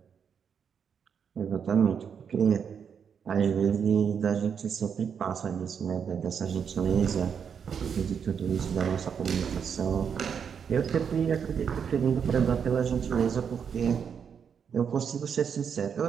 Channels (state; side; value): quieter; left; 7.2 dB